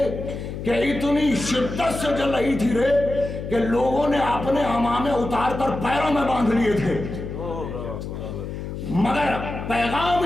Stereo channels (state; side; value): noise; left; hum, 7 dB below the sound